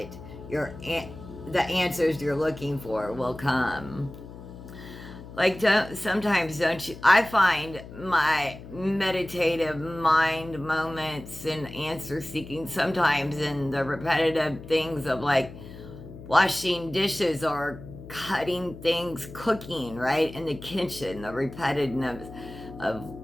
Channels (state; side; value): noise; left; hum, 14 dB below the sound